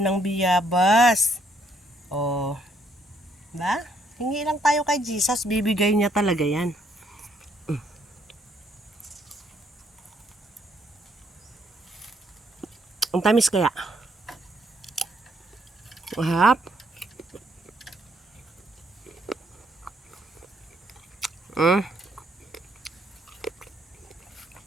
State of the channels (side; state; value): both; normal; correlation 0.70